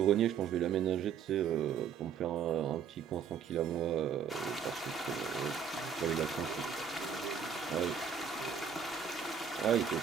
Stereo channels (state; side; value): quieter; left; 7.2 dB